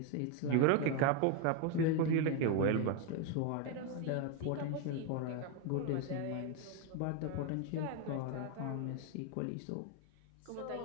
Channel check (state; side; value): different; both; correlation 0.02